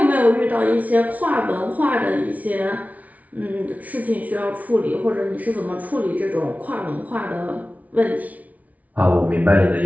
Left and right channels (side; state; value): left; late; 0.071 ms